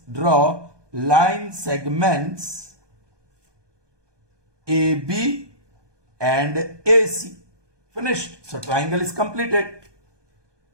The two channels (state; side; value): late; left; 1.2 ms